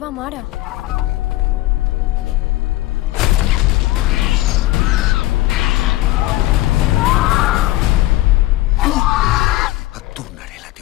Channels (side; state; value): right; quieter; 17.7 dB